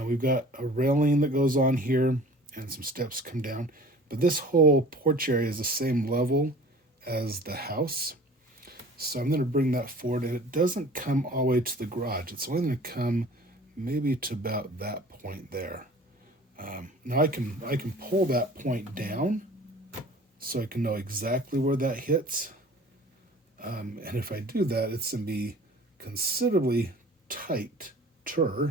got a railing that goes on here and some steps come down. But this whole porch area is the same level as the house. So I'm going to bring that forward, and it doesn't come all the way to the garage. It's only going to come maybe to about that point there. Now I can pull that point down so I can know exactly where that hits. And if I do that, it's going to be considerably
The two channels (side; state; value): both; normal; correlation 0.45